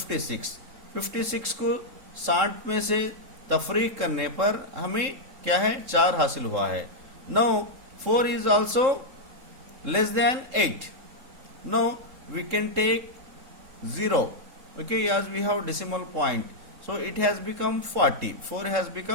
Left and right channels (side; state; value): left; late; 3.7 ms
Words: 56 को 60 में से तफरीक करने पर हमें क्या है, 4 हासिल हुआ है. Now 4 is also less than 8. Now we can take 0. Okay, as we have decimal point, so it has become 40. 4 has